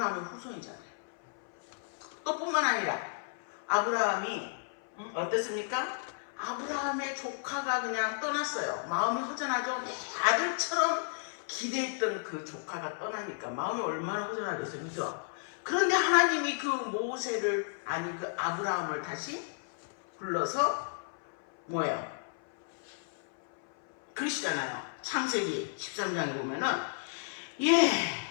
후손이잖아요. 또 뿐만 아니라 아브라함이 어땠습니까? 아브라함의 조카가 그냥 떠났어요. 마음이 허전하죠. 아들처럼 기대했던 그 조카가 떠나니까 마음이 얼마나 허전하겠어요, 그죠? 그런데 하나님이 그 모세를, 그 아브라함을 다시 불러서 뭐예요? 그러시잖아요. 창세기 13장에 보면은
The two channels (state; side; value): silent; right; 56 dB below the other